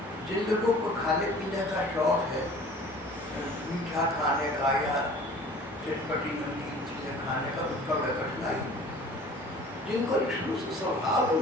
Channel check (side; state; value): both; normal; correlation 0.47